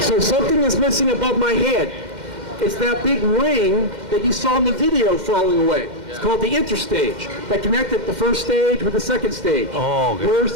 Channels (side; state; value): left; late; 2.1 ms